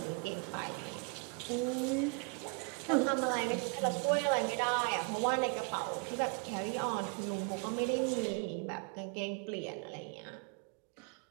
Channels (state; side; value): quieter; left; 34.7 dB